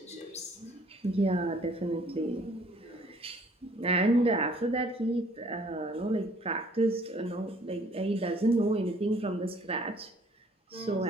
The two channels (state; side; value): normal; both; correlation 0.58